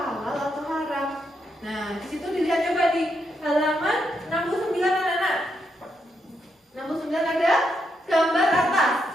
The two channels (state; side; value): normal; both; correlation 0.80